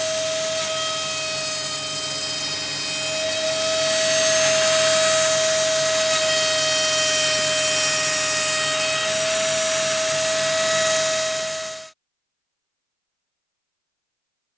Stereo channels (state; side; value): identical; both; correlation 1.00